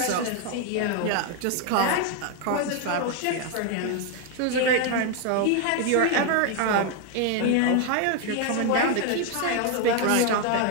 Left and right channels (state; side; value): different; both; correlation 0.01